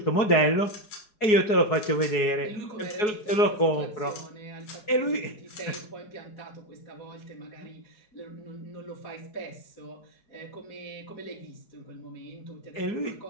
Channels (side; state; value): right; late; 4.7 ms